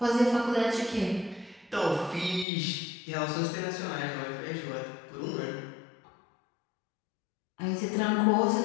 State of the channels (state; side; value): drops out; right; at 2.5 s